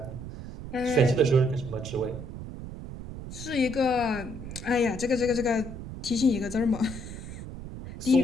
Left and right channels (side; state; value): right; noise; rumble, 10 dB below the sound